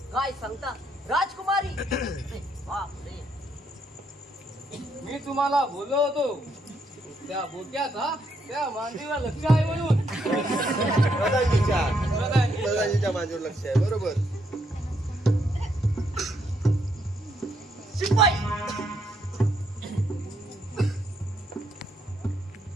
काय सांगता राजकुमारी बापरे. मी तुम्हाला बोललो होतो त्या बोक्याचा त्या मांडीवर लक्ष आहे म्हणून. प्रधानजीच्या माझ्यावर लक्ष आहे. बरोबर. शिपाई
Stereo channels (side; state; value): both; normal; correlation 0.74